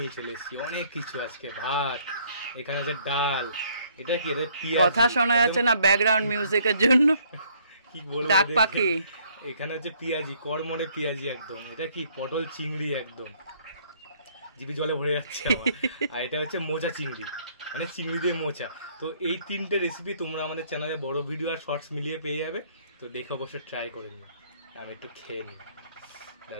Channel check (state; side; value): inverted; both; correlation -0.63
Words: চলে এসেছি, অনেক কিছু। আজকে ভাত, এখানে হচ্ছে ডাল, এটা কি, এটা পেঁয়াজি। কথা শোনা যাচ্ছে না ব্যাকগ্রাউন্ড মিউজিকের জন্য, কি বলবো, ডাক পাখি। এখানে হচ্ছে পেঁয়াজি, কড়মড়ে পেঁয়াজি একদম। এটা কি, পটল চিংড়ি, একদম জিভে জলে ভরে যাচ্ছে আমার। আর এটা হচ্ছে মোচা চিংড়ি, মানে চিংড়ি দিয়ে মোচা। তো এই তিনটে রেসিপি তোমরা আমাদের চ্যানেলে বড় ভিডিও আর শর্টস মিলিয়ে পেয়ে যাবে। তো দেখে অবশ্যই ট্রাই করে নিও। আমি একটু খেয়ে নিই।